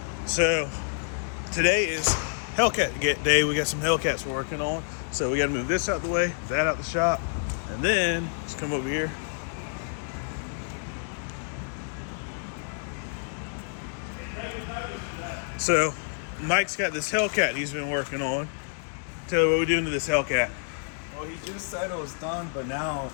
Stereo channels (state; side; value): silent; right; digital silence